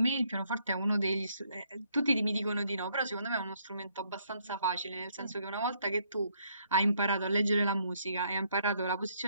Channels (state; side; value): inverted; both; correlation -0.70